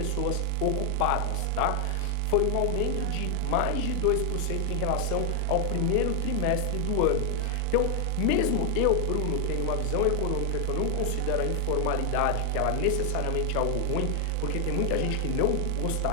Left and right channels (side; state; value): both; different; correlation 0.00